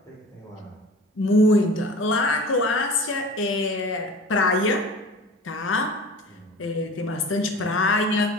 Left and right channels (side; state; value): both; normal; correlation 0.39